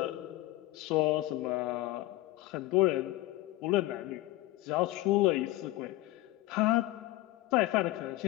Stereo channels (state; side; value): quieter; right; 18.0 dB